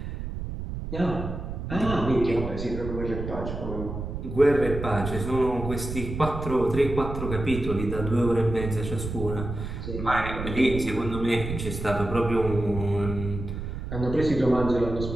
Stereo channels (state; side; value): noise; right; rumble, 6 dB below the sound